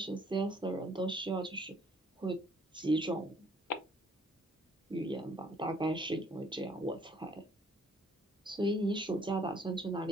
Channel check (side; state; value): both; normal; correlation 0.62